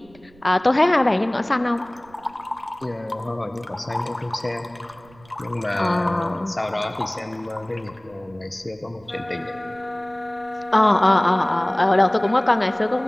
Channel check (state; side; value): noise; right; rumble, 27 dB below the sound